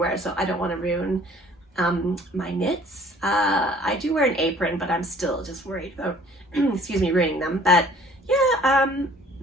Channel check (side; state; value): both; normal; correlation 0.53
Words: so I don't want to ruin my knits. I do wear an apron, but I'm still just worried about, excuse me, ruining them. But yeah,